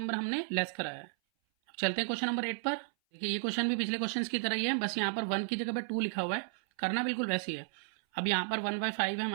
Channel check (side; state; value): left; silent; 55 dB below the other